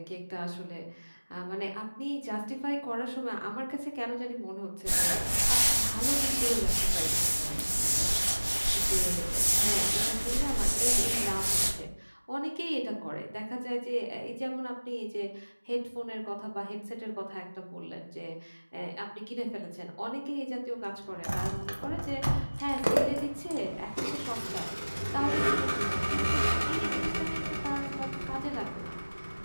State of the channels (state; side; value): inverted; both; correlation -1.00